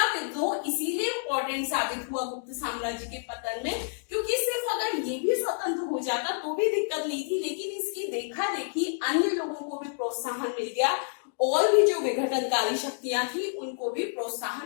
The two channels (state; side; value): silent; right; digital silence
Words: विद्रोह इसीलिए इंपॉर्टेंट साबित हुआ गुप्त साम्राज्य के पतन में, क्योंकि सिर्फ अगर ये भी स्वतंत्र हो जाता तो भी दिक्कत नहीं थी, लेकिन इसकी देखा देखी अन्य लोगों को भी प्रोत्साहन मिल गया और भी जो विघटनकारी शक्तियां थी उनको भी